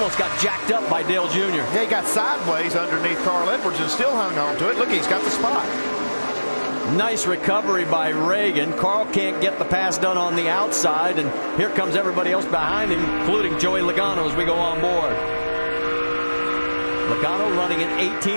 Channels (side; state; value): both; inverted; correlation -1.00